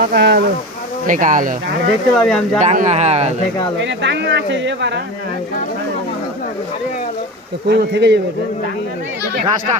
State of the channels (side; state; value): both; normal; correlation 0.27